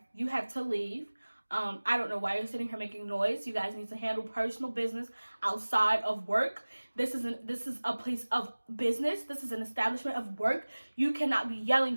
you have to leave. I don't know why you're sitting here making noise. You guys need to handle personal business outside of work. This is a place of business. This is an establishment of work. You cannot be yelling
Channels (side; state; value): both; inverted; correlation -1.00